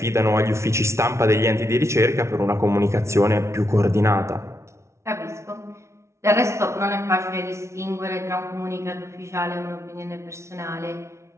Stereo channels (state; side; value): late; left; 0.13 ms